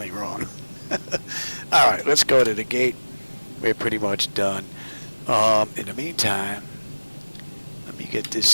wrong. All right, let's go to the gate. We're pretty much done. In the meantime, let me get this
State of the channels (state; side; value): inverted; both; correlation -1.00